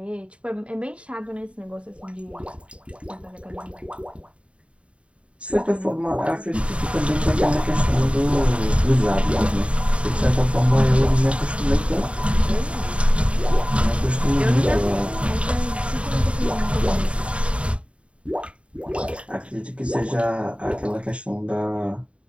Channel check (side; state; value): left; late; 0.060 ms